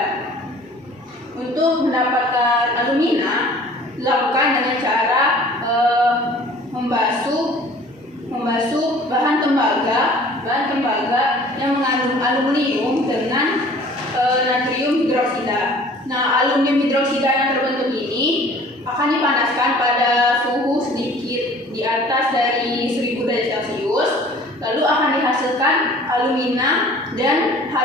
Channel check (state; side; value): normal; both; correlation 0.50